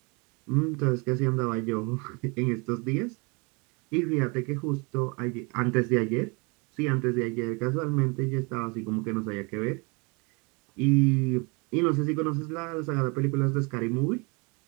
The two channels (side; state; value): left; quieter; 30.5 dB